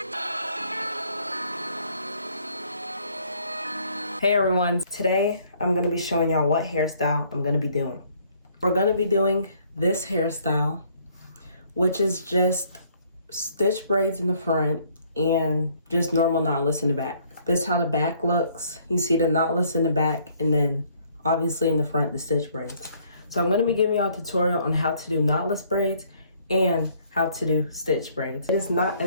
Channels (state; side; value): inverted; both; correlation -0.63